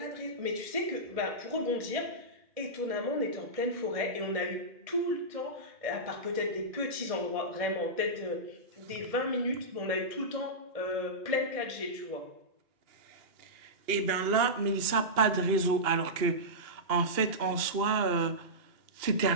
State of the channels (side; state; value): left; late; 2.8 ms